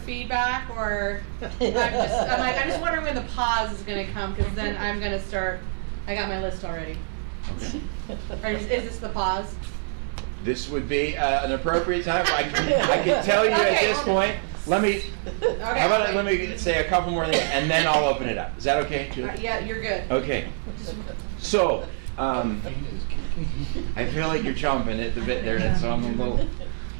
or I'm just wondering when the pause is going to come, because then I'm going to start. I got my list already. Okay. Or is this the pause? This would be an appropriate time. I can tell you at this point. Let me say a couple more things, and then I'll open it up. Is that okay, Julie? Yeah, you're good. Okay. So, I feel like you're chomping at the bit there, so I'm a little.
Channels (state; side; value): silent; left; 62 dB below the other